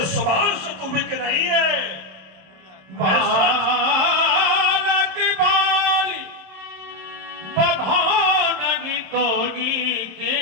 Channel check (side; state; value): left; late; 27 ms